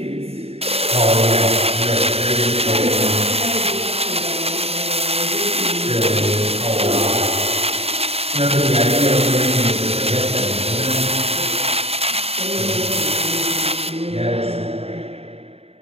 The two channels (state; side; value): late; left; 0.29 ms